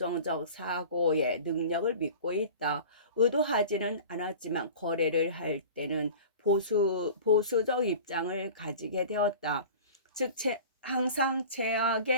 사고의 능력을 믿고 있다. 의도하지는 않았지만 거래를 할 때는 보수적 입장을 가지게 되었다. 즉, 항상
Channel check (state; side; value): inverted; both; correlation -0.39